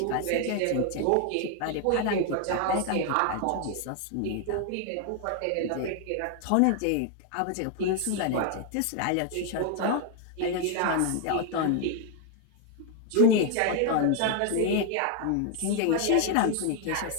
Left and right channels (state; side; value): different; both; correlation 0.00